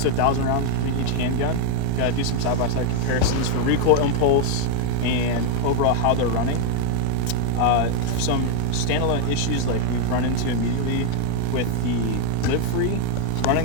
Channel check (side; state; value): both; different; correlation 0.00